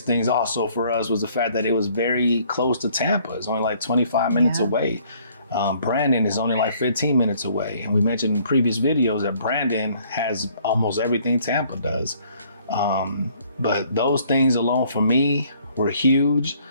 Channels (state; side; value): inverted; both; correlation -0.62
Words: things also for us was the fact that it was very close to Tampa. It's only like 25 minutes away. Brandon is only like 15 minutes away. And we mentioned in previous videos that Brandon has almost everything Tampa does. But those things alone for me were huge.